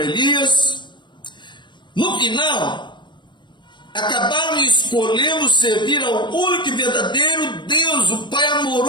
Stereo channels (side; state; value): right; late; 0.22 ms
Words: no final, acabaram escolhendo servir ao único e verdadeiro Deus, o Pai